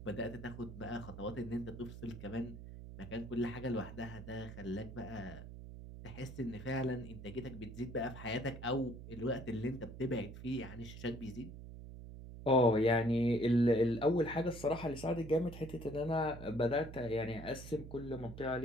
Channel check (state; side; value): noise; right; hum, 12 dB below the sound